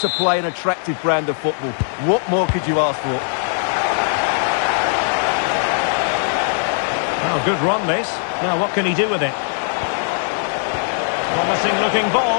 play an attractive brand of football. What more could you ask for? Oh, good run this. Now what can he do with it? Promising looking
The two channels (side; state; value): right; silent; digital silence